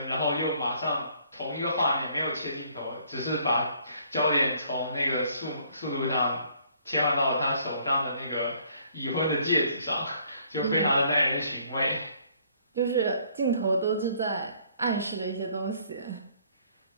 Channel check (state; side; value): inverted; both; correlation -0.62